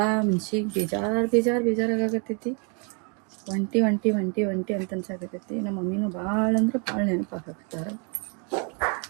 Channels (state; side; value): quieter; left; 37.1 dB